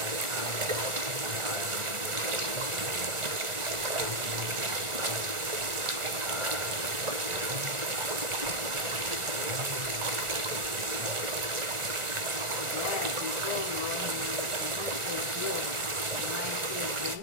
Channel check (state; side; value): late; left; 1.4 ms